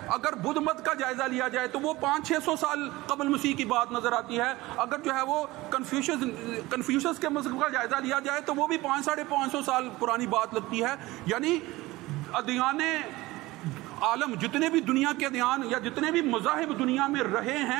اگر بدھ مت کا جائزہ لیا جائے تو وہ 500-600 سال قبل مسیح کی بات نظر آتی ہے۔ اگر جو ہے وہ کنفیوشس کے مذہب کا جائزہ لیا جائے تو وہ بھی 500-550 سال پرانی بات لگتی ہے۔ یعنی ادیان عالم جتنے بھی دنیا کے ادیان یا جتنے بھی مذاہب دنیا میں رہے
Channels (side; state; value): left; quieter; 19.5 dB